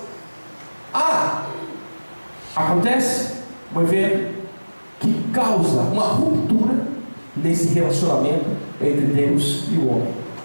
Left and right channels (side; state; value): both; inverted; correlation -1.00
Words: acontece um evento que causa uma ruptura nesse relacionamento entre Deus e o homem.